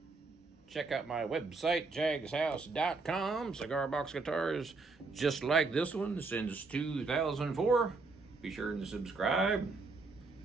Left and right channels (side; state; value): left; quieter; 3.9 dB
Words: Check out my website, jagshouse.com. Cigar box guitars just like this one since 2004. Be sure to subscribe.